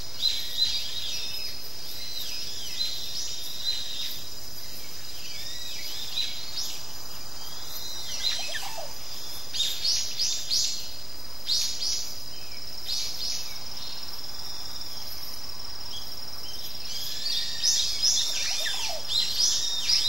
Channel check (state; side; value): normal; both; correlation 0.90